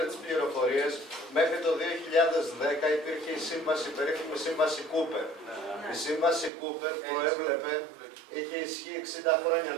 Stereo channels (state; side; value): drops out; left; at 6.5 s